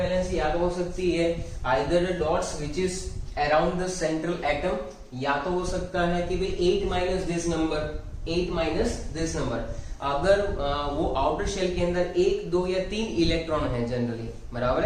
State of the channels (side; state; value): both; identical; correlation 1.00